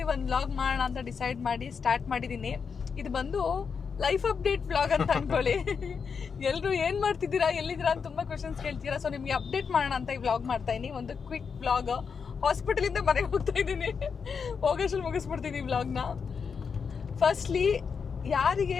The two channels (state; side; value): quieter; right; 6.0 dB